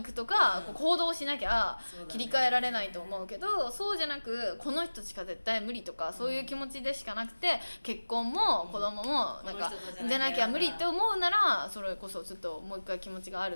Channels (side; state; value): both; inverted; correlation -1.00